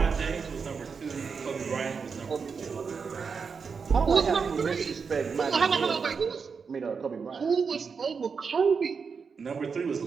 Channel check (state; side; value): quieter; left; 5.6 dB